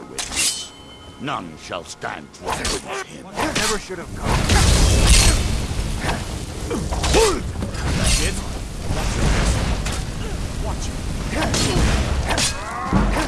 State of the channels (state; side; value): identical; both; correlation 1.00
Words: witness. None shall stand to witness him. Never should have come. That's it? Watch it.